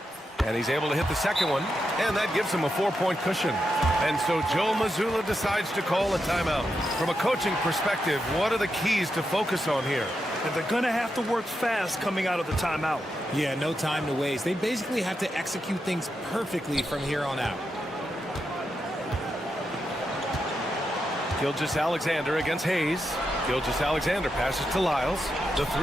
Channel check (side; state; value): both; normal; correlation 0.86